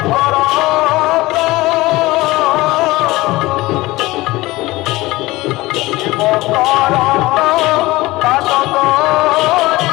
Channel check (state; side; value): quieter; right; 19.6 dB